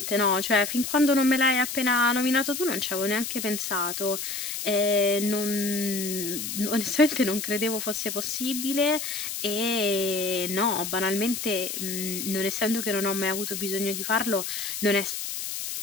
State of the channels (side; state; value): left; noise; hiss, 5 dB below the sound